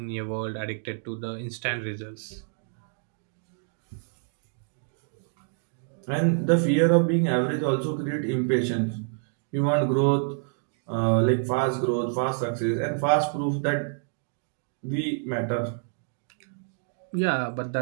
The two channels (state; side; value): silent; left; digital silence